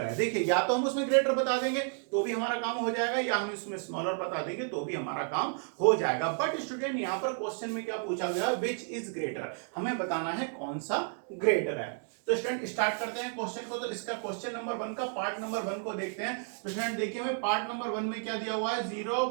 है। देखिए या तो हम उसमें ग्रेटर बता देंगे तो भी हमारा काम हो जाएगा, या हम इसमें स्मॉलर बता देंगे तो भी हमारा काम हो जाएगा। बट स्टूडेंट यहाँ पर क्वेश्चन में क्या पूछा गया, विच इज ग्रेटर, हमें बताना है कौन सा ग्रेटर है। तो स्टूडेंट स्टार्ट करते हैं क्वेश्चन को। तो इसका क्वेश्चन नंबर 1 का पार्ट नंबर 1 को देखते हैं। तो स्टूडेंट देखिए हमें पार्ट नंबर 1 में क्या दिया हुआ है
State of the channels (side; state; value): left; silent; 57 dB below the other